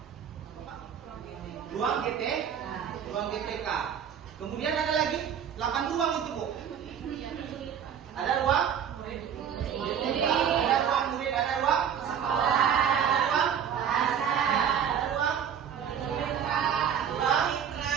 Ruang GT, ruang GTK. Kemudian ada lagi 8 ruang itu Bu. Ada ruang GTK, ada ruang murid, ada ruang sekolah, ada ruang bahasa, ada ruang ruang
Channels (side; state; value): left; quieter; 8.4 dB